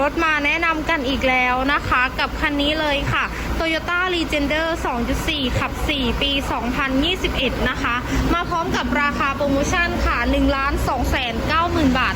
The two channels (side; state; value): both; identical; correlation 1.00